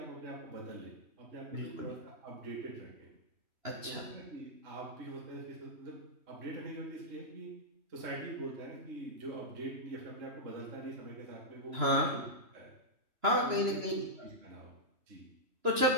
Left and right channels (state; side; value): late; left; 2.9 ms